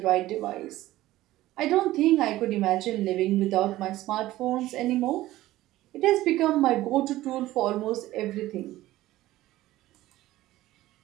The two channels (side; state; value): left; quieter; 16.0 dB